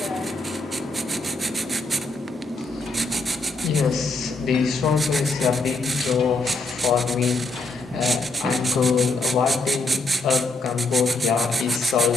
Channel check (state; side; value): quieter; right; 3.2 dB